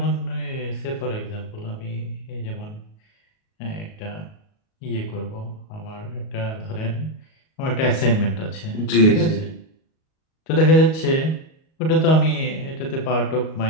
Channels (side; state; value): right; late; 38 ms